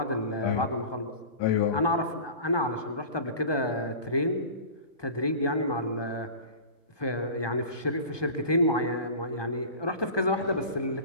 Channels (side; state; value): right; late; 1.2 ms